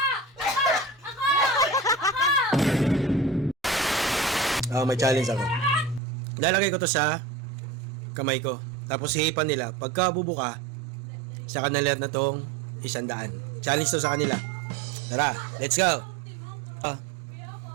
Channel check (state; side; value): drops out; left; at 6.0 s